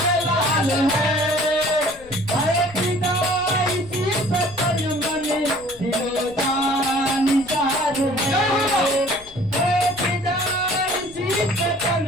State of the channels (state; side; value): noise; left; rumble, 23 dB below the sound